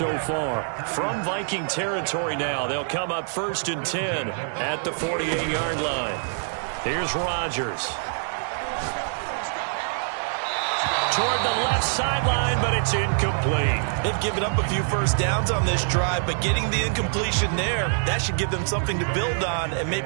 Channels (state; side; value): silent; left; 58 dB below the other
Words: far. From Viking territory now, they'll come up 1st and 10 at the 48-yard line. Here's Rodgers. Toward the left sideline, but it's incomplete. They've given up a few first downs on this drive, but getting the incompletion there, that should give them something to build on and